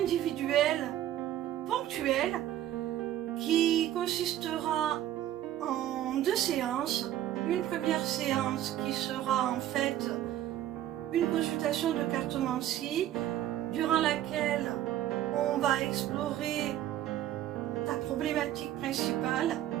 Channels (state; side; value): quieter; left; 12.4 dB